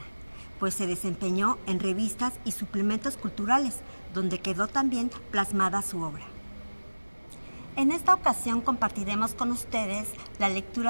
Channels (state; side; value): inverted; both; correlation -1.00